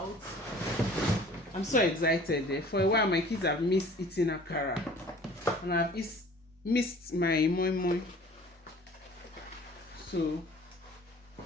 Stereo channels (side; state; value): both; normal; correlation 0.49